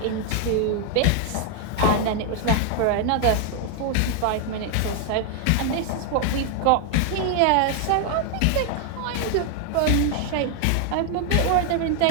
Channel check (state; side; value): different; both; correlation 0.00